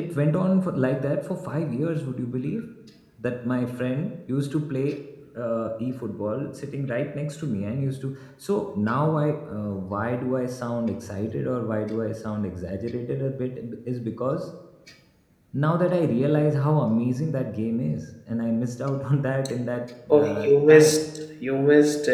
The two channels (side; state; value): both; identical; correlation 1.00